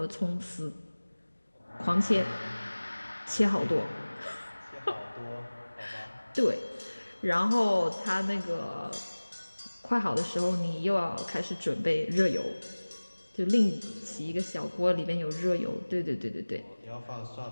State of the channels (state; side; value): inverted; both; correlation -1.00